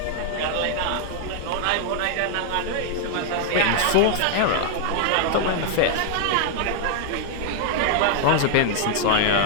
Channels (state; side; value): different; both; correlation 0.00